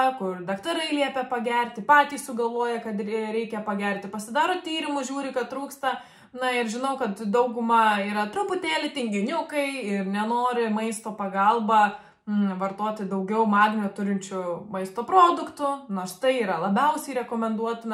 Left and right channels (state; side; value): identical; both; correlation 1.00